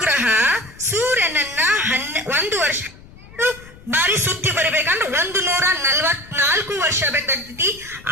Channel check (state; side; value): noise; left; rumble, 21 dB below the sound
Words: ಸೂರ್ಯನನ್ನ 1 ವರ್ಷ ಬಾರಿ ಸುತ್ತಿ ಬರಬೇಕಂದ್ರೆ 144 ವರ್ಷ ಬೇಕಾಗ್ತೈತಿ.